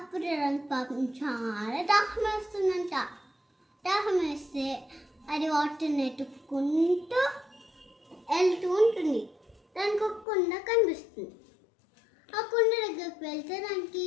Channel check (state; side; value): drops out; right; at 10.2 s